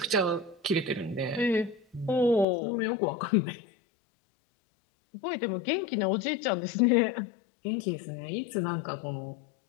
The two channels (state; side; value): drops out; right; at 2.5 s